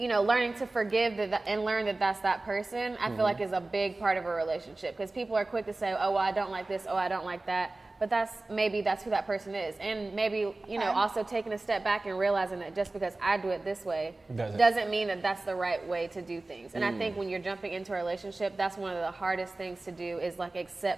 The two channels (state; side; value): quieter; left; 3.1 dB